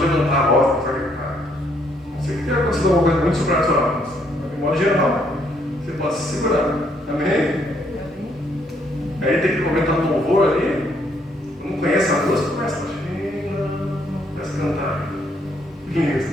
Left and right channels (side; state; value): both; normal; correlation 0.70